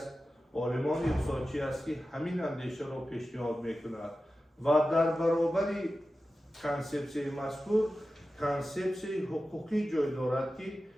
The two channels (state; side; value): normal; both; correlation 0.94